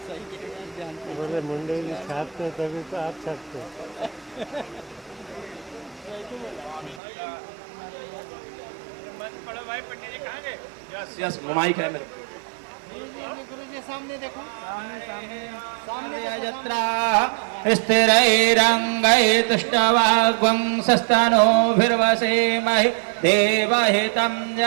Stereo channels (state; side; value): drops out; left; at 7.0 s